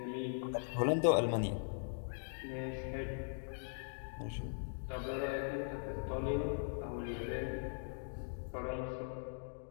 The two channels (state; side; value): silent; right; digital silence